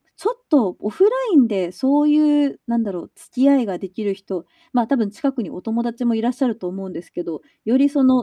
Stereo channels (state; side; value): identical; both; correlation 1.00